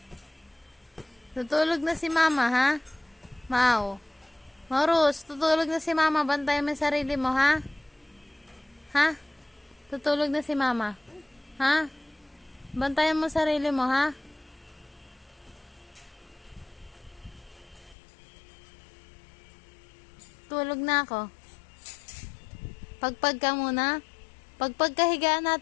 Tutulog na si mama, ha? Mau. Maurus, tutulog na si mama. Bantayan mo yung sarili mo, ha? Ha? Tutulog na si mama. Ha? Bantayan mo sarili mo, ha? Tulog na ako. Pagpag ka muna. Pagpag ka higaan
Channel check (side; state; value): right; drops out; at 17.9 s